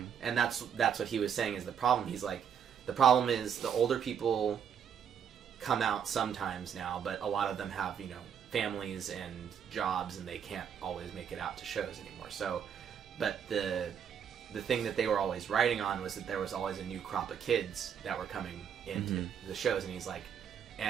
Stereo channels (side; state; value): left; quieter; 8.1 dB